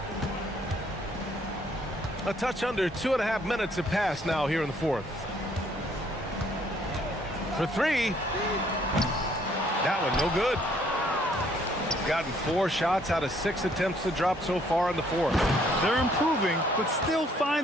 A touch under 2.5 minutes have passed now here in the fourth. For 3. That one no good. Gotten 4 shots out of 6 attempts to drop so far in the fourth. They're improving, but still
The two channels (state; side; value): normal; both; correlation 0.65